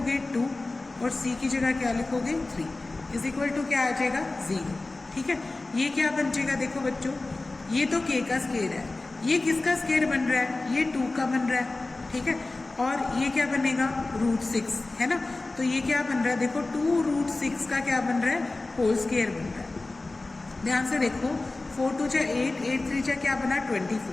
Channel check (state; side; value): quieter; right; 3.2 dB